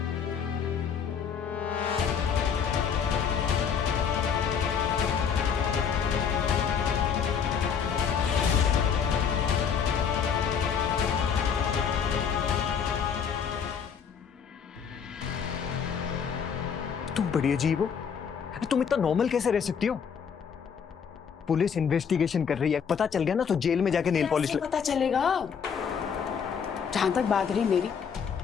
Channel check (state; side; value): quieter; right; 7.0 dB